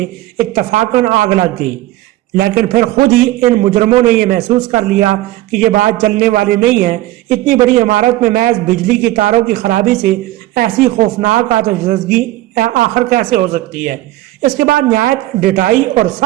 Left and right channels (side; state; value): left; quieter; 16.2 dB